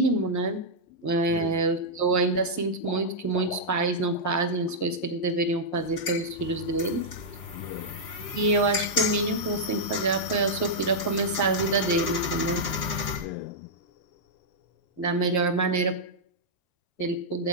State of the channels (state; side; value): late; right; 11 ms